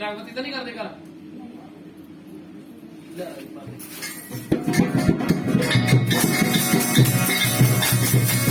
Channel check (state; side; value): identical; both; correlation 1.00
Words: ਬੱਤੀ ਤਾਂ ਨਹੀਂ ਕਰਦੇ ਘਰ ਲੈ ਬਾਬੇ